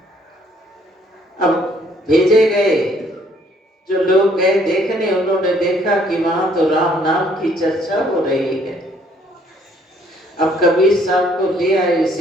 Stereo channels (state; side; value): normal; both; correlation 0.64